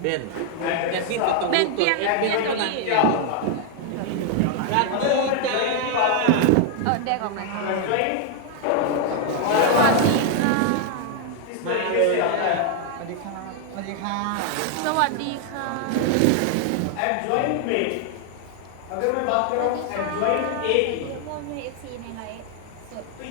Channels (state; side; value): different; both; correlation 0.00